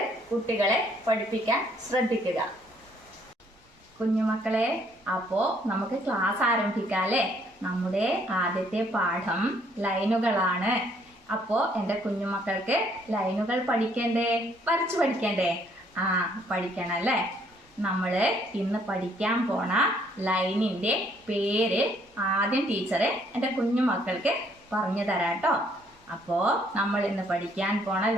കുട്ടികളെ പഠിപ്പിക്കാൻ ശ്രദ്ധിക്കുക. കുഞ്ഞുമക്കളെ, അപ്പോൾ നമുക്ക് ക്ലാസ് ആരംഭിക്കാല്ലേ? നമ്മുടെ ആദ്യത്തെ പാഠം ലൈനുകളാണ്. അപ്പോൾ എൻ്റെ കുഞ്ഞുമക്കൾക്ക് ലൈനുകൾ പഠിക്കണ്ടേ? വരച്ചു പഠിക്കണ്ടേ? പഠിക്കണം അല്ലേ? നമ്മൾ ഇന്ന് പഠിക്കാൻ പോണ ലൈനിന്റെ പേര് ആദ്യം ടീച്ചറെ എൻ്റെ കുഞ്ഞുമക്കൾക്ക് പറഞ്ഞു തരാട്ടോ. അപ്പോ നമ്മൾ ഇന്ന് പഠിക്കാൻ പോണ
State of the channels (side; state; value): both; normal; correlation 0.66